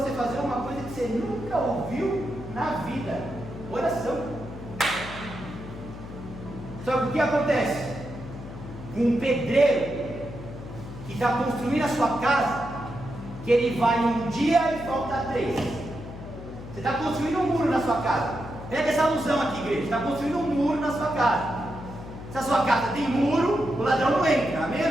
fazer uma coisa que você nunca ouviu na vida: oração. Só que o que acontece? Um pedreiro que está construindo a sua casa, que ele vai um dia e volta 3. Você está construindo um muro na sua casa. Pega essa alusão aqui, igreja. Você está construindo um muro na sua casa. Se a sua casa tem muro, o ladrão não entra. Amém ou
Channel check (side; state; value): left; noise; hum, 12 dB below the sound